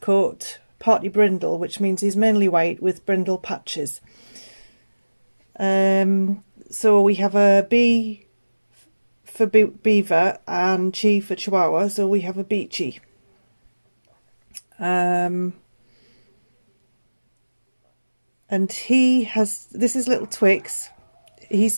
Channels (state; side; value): inverted; both; correlation -1.00